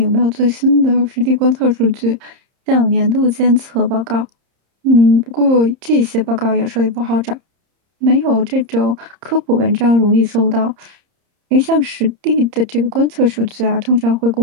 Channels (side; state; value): left; late; 30 ms